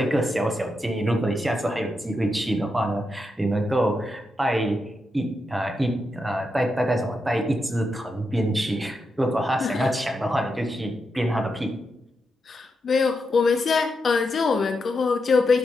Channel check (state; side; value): normal; both; correlation 0.85